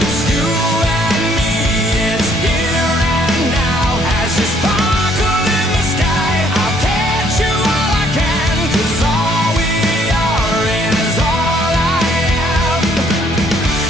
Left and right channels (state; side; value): normal; both; correlation 0.65